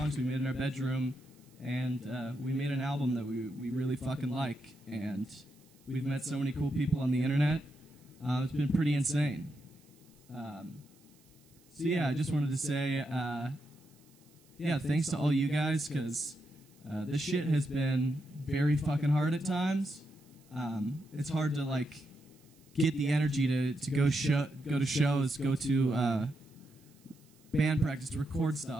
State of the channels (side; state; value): right; noise; hiss, 30 dB below the sound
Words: we made in our bedroom, and we made an album that we really fucking like, and we've met so many cool people on the internet. It's been pretty insane. So yeah, I just wanted to say, yeah, thanks to all you guys, because this shit has been very fucking hard at times. It's hard to like get the energy to go to shows, go to band practice, to record